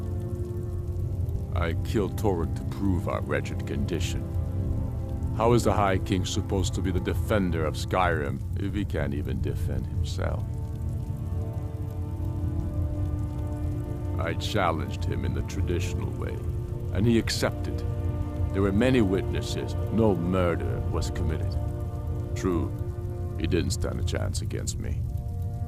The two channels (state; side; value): identical; both; correlation 1.00